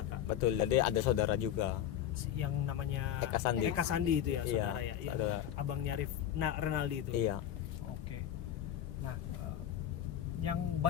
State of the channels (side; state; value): right; quieter; 10.8 dB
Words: betul. Jadi ada saudara juga. Yang namanya Eka Sandi. Eka Sandi itu ya, Iya, saudara ya, yang saudara. abangnya Renaldi itu. Iya. Oke. Nah, yang